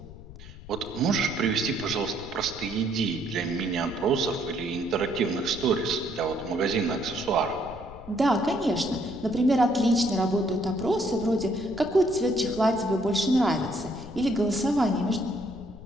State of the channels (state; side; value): noise; left; rumble, 16 dB below the sound